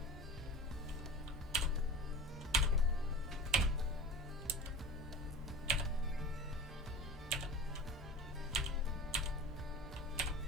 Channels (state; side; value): normal; both; correlation 0.33